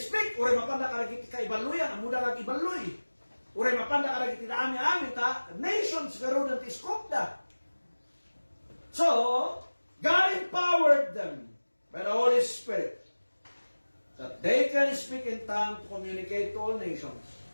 uray mapanda kalagiti ka ibaluyan, ang muda kag ibaluy. Uray mapanda kalagiti na aming ta, nations karoon ng tiskop da. So, God empowered them by the Holy Spirit that they can speak in tongue to communicate to all nations.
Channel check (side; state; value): both; inverted; correlation -1.00